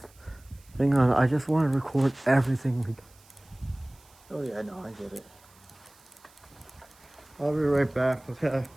thing on it, I just want to record everything we do. Oh yeah, no, I get it. I'll be right back, okay?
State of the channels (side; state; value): right; noise; hiss, 28 dB below the sound